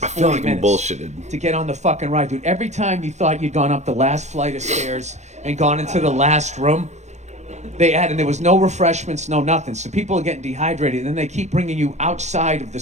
I feel like minutes I'm bullshitted to get on the fucking ride, dude. Every time you thought you'd gone up the last flight of stairs and gone into the last room, and there was no refreshments, no nothing. So people are getting dehydrated, and then they keep bringing you outside of the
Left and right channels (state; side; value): late; left; 0.34 ms